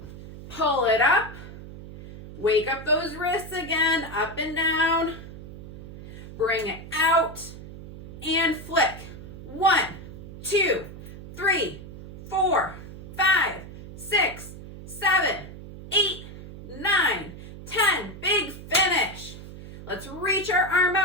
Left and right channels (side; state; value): right; noise; hum, 14 dB below the sound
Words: Pull it up. Wake up those wrists again, up and down. Bring it out and flick. 1, 2, 3, 4, 5, 6, 7, 8, 9, 10. Big finish. Let's reach our arm